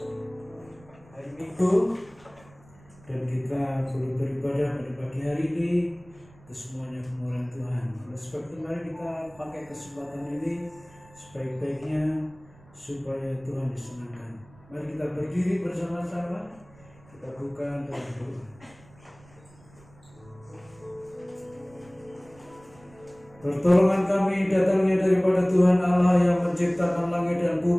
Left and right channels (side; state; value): right; noise; rumble, 26 dB below the sound